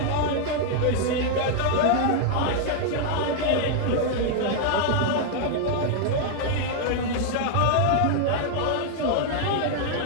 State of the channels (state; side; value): different; both; correlation 0.00